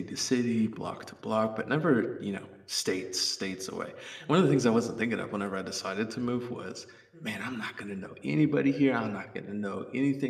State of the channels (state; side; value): identical; both; correlation 1.00